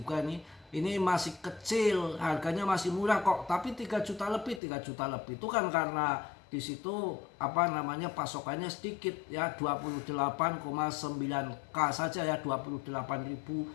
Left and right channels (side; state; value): right; drops out; at 4.6 s